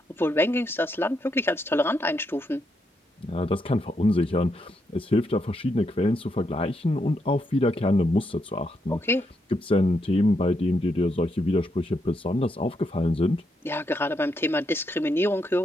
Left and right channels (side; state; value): both; normal; correlation 0.79